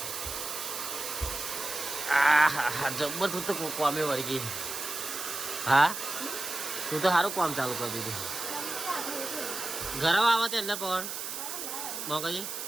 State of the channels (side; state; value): right; noise; hiss, 6 dB below the sound